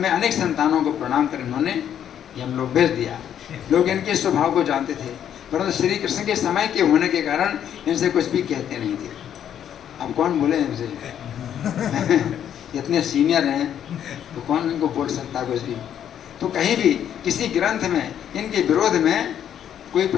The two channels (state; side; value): quieter; right; 9.7 dB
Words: अनेक संतानों को प्रणाम कर इन्होंने ये हम लोग भेज दिया। लोग इनके स्वभाव को जानते थे, परंतु श्री कृष्ण के समय के होने के कारण इनसे कुछ भी कहते नहीं थे। अब कौन बोले इनसे इतने सीनियर हैं तो कौन इनको बोल सकता कुछ भी। तो कहीं भी किसी ग्रंथ में इनके विरोध में कोई